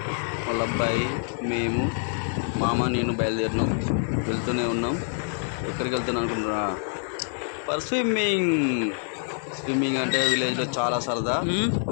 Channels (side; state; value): right; silent; 61 dB below the other